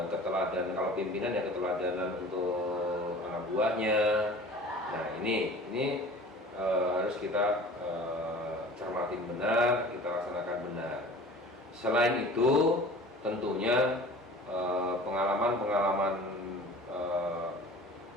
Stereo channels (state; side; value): normal; both; correlation 0.43